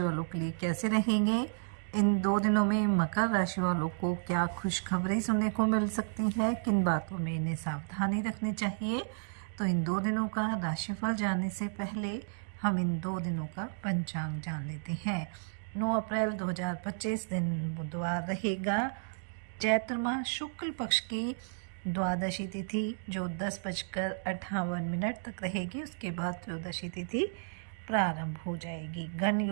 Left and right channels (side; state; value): left; silent; digital silence